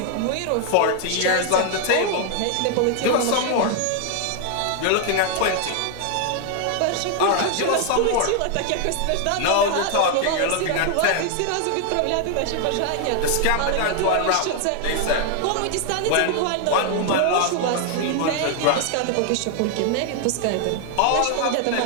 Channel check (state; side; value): different; both; correlation 0.00